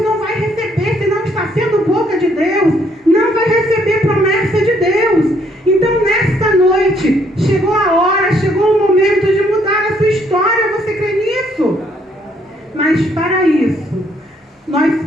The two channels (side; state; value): both; normal; correlation 0.68